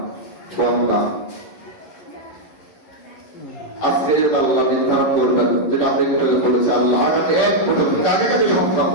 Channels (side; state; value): right; late; 11 ms